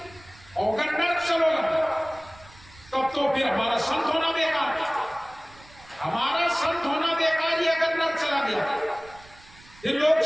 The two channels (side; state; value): right; noise; rumble, 24 dB below the sound